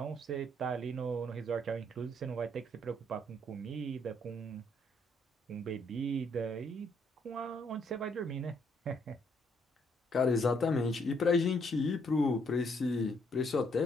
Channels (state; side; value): normal; both; correlation 0.70